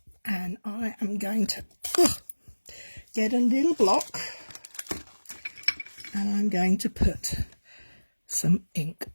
and I am going to get a little block, and I'm going to put some ink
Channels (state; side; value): inverted; both; correlation -1.00